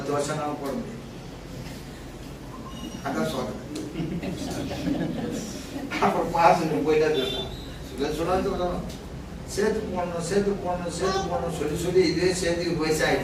வருஷம் போட முடியும். அதான் சொல்றேன். அப்புறம் மாசம் போயிட்டா சொல்லணும், சேர்த்து போடணும் சேர்த்து போடணும் சேர்த்து போடணும் சொல்லி சொல்லி இதே சேர்த்துக்கு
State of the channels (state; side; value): identical; both; correlation 1.00